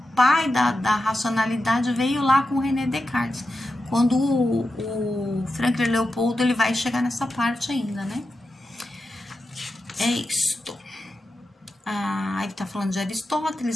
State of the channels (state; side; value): normal; both; correlation 0.90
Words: pai da racionalidade veio lá com o René Descartes, quando o Franklin Leopoldo ele vai chegar nessa parte ainda, né? É isto. Ele tá falando de